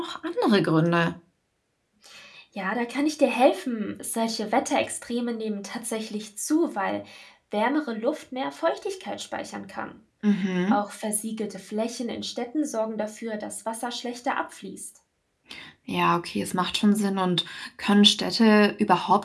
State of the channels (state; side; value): identical; both; correlation 1.00